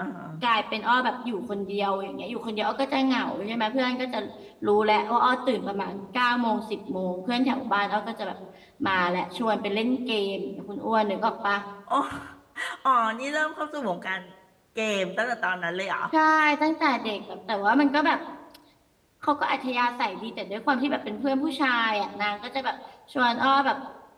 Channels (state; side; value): identical; both; correlation 1.00